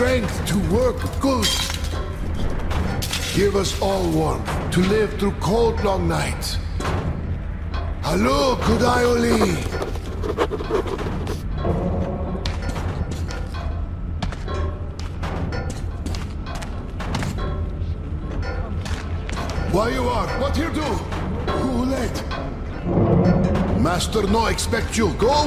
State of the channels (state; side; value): identical; both; correlation 1.00